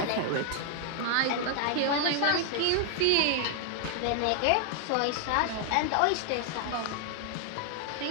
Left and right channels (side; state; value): both; different; correlation 0.00